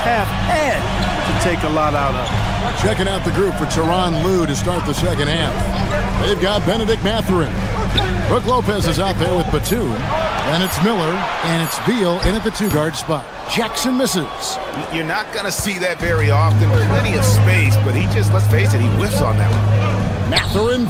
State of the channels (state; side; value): identical; both; correlation 1.00